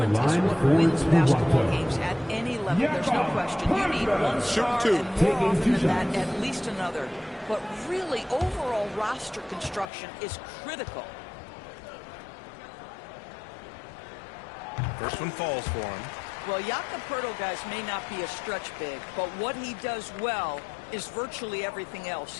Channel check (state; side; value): drops out; right; at 9.9 s